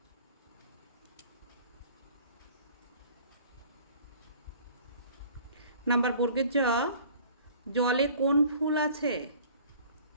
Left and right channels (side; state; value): both; inverted; correlation -0.50